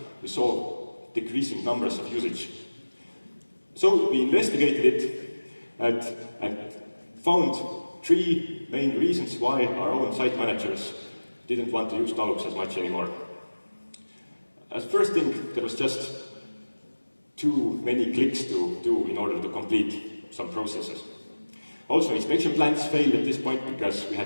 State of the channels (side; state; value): both; inverted; correlation -1.00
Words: we saw decreasing numbers of usage. So we investigated it and found 3 main reasons why our own site managers didn't want to use Dalux as much anymore. As first thing, there was just too many clicks to do in order to complete some processes. Also, inspection plans failed at this point because we